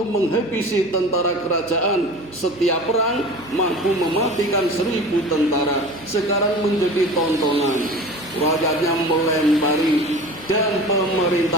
menghabisi tentara kerajaan. Setiap perang mampu mematikan 1000 tentara. Sekarang menjadi tontonan. Rakyatnya melempari. Dan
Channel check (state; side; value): noise; right; hum, 23 dB below the sound